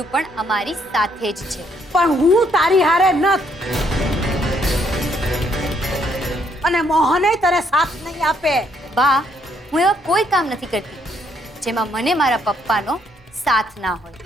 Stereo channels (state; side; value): normal; both; correlation 0.70